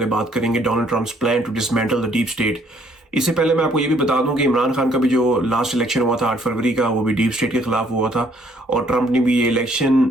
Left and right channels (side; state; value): both; normal; correlation 0.64